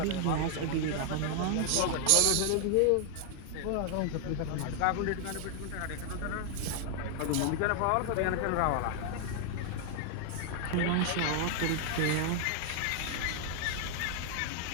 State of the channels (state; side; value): different; both; correlation 0.00